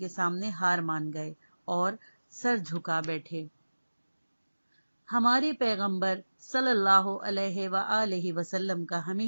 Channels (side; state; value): both; inverted; correlation -1.00